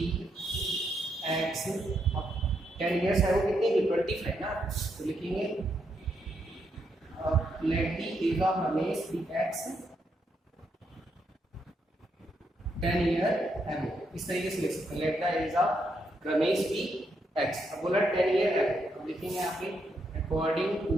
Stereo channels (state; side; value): normal; both; correlation 0.79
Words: x. 10 years है वो कितनी थी 25 ना, तो लिखेंगे let the age of Ramesh be x 10 year ago, इस तरीके से लिख सकते हैं, let the age of Ramesh be x. अब बोला 10 ईयर एगो, अब लिखेंगे यहाँ पे according to the